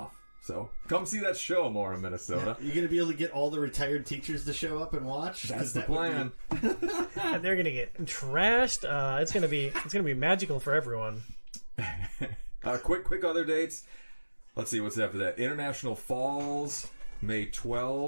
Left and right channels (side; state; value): both; inverted; correlation -1.00